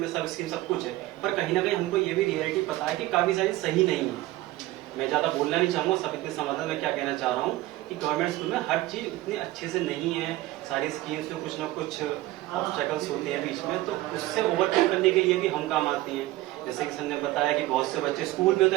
सब स्कीम सब कुछ है, पर कहीं ना कहीं हमको ये भी रियलिटी पता है कि काफी सारी सही नहीं है। मैं ज्यादा बोलना नहीं चाहूंगा, सब इतने समझ मैं क्या कहना चाह रहा हूँ कि गवर्नमेंट स्कूल में हर चीज उतनी अच्छे से नहीं है, सारी स्कीम्स में कुछ ना कुछ ऑब्स्टेकल्स होते हैं बीच में, तो उससे ओवरकम करने के लिए भी हम काम आते हैं। जैसे कि सर ने बताया कि बहुत से बच्चे स्कूल में तो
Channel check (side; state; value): left; quieter; 17.1 dB